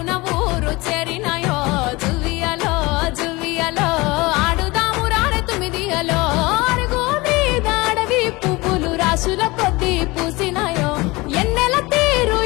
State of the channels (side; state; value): right; quieter; 22.8 dB